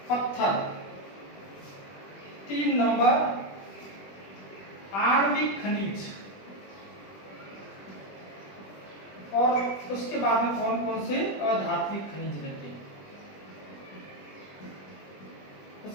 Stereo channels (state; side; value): late; right; 20 ms